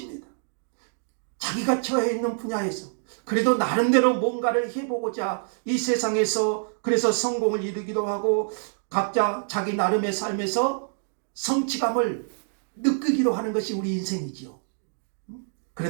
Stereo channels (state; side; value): silent; left; digital silence